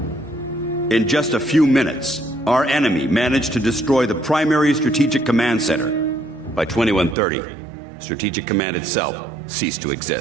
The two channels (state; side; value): drops out; left; at 7.2 s